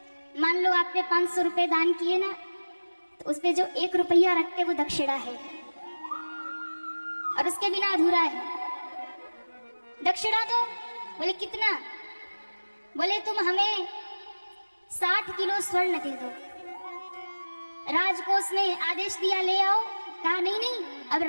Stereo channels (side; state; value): both; inverted; correlation -1.00